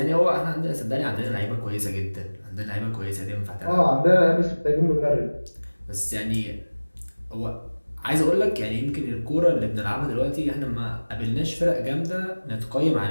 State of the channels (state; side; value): inverted; both; correlation -1.00